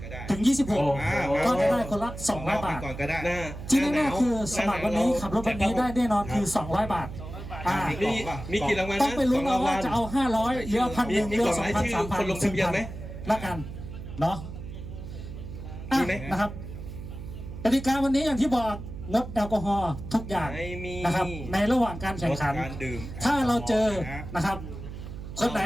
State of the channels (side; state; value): right; noise; hum, 10 dB below the sound